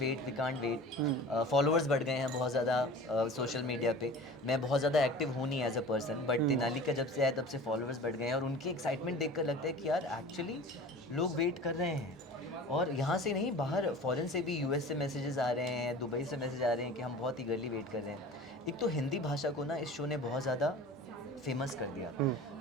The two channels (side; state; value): both; normal; correlation 0.39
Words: वेट। फॉलोअर्स बढ़ गए हैं बहुत ज़्यादा सोशल मीडिया पे। मैं बहुत ज़्यादा एक्टिव हूँ नहीं as a person, but Tenali का जब से आया तब से फॉलोअर्स बढ़ गए हैं और उनकी एक्साइटमेंट देखकर लगता है कि यार एक्चुअली लोग वेट कर रहे हैं। और यहाँ से नहीं, बाहर फॉरेन से भी, यूएस से मैसेजेस आ रहे हैं, दुबई से मैसेज आ रहे हैं कि हम बहुत ईगरली वेट कर रहे हैं। एक तो हिंदी भाषा को ना इस शो ने बहुत ज़्यादा फेमस कर दिया,